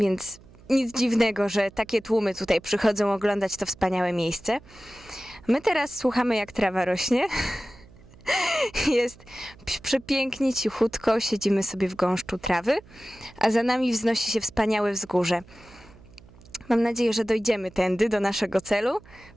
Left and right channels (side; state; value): right; noise; hum, 23 dB below the sound